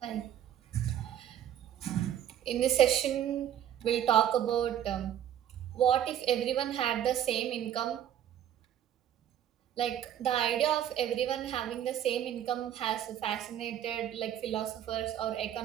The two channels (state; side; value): quieter; left; 10.6 dB